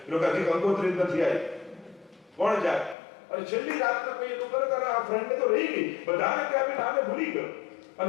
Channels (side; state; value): right; drops out; at 3.0 s